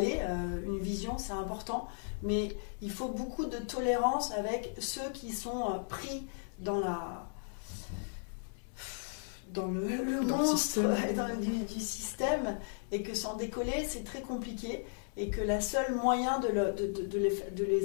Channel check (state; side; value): silent; right; 54 dB below the other